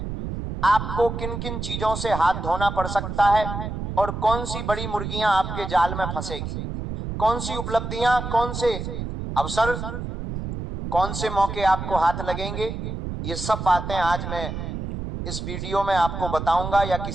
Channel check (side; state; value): right; noise; rumble, 5 dB below the sound